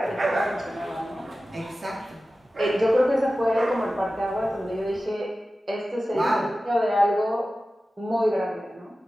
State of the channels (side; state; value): both; normal; correlation 0.95